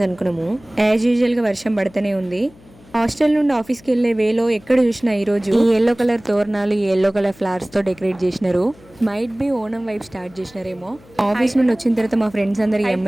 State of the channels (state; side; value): noise; left; hum, 25 dB below the sound